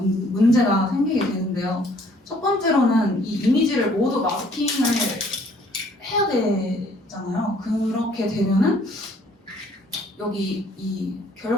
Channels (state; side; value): normal; both; correlation 0.60